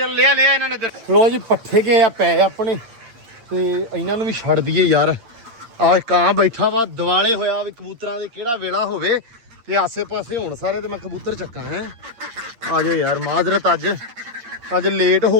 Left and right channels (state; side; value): late; left; 8.8 ms